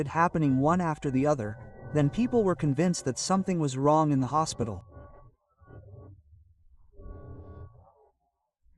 happening one after the other, then people were convinced that something was wrong in the hospital.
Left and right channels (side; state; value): both; identical; correlation 1.00